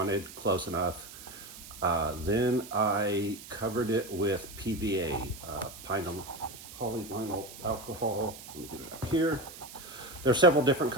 close enough. Then I covered it with PVA, polyvinyl alcohol. Let me get it out here. There are several different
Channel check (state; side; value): noise; right; hiss, 15 dB below the sound